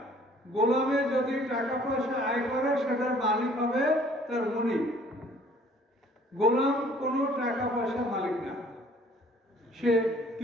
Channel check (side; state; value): both; normal; correlation 0.56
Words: গোলামে যদি টাকা পয়সা আয় করে সেটার মালিক হবে তার মুনিব। গোলাম কোনো টাকা পয়সা মালিক না, সে